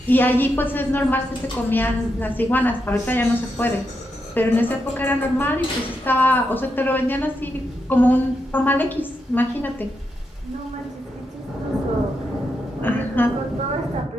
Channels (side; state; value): both; normal; correlation 0.84